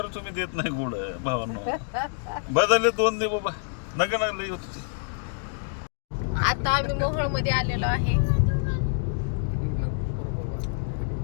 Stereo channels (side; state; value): right; silent; digital silence